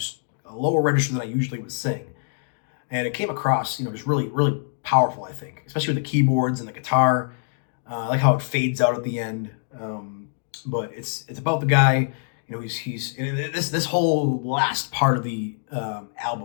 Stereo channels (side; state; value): right; silent; digital silence